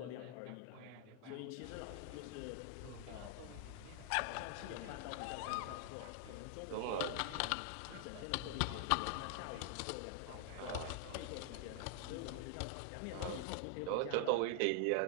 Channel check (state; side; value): different; both; correlation 0.00